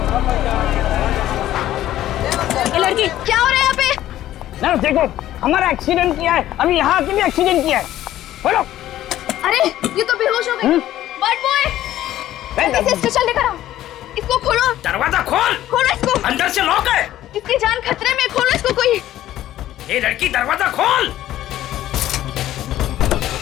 लड़की क्या हो रहा है यहाँ पे? नर्स देखो, हमारा एक्सीडेंट किया है। अभी यहाँ के भी एक्सीडेंट किया है। बोलो। अरे ये तो बेहोश हो गई। बर्ड बॉय, जल्दी से स्ट्रेचर लेकर आओ। इसको खोलो। दरवाजा खोल। खोलो इसको। अंदर से लॉक है। इसकी जान खतरे में, खोलो इसको कोई। ये लड़की दरवाजा खोल।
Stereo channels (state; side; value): quieter; right; 13.4 dB